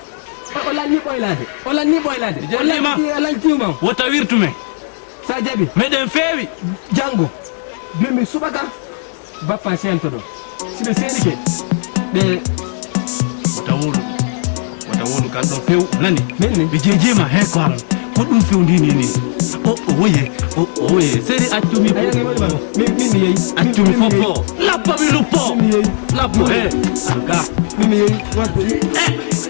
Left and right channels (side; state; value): right; silent; digital silence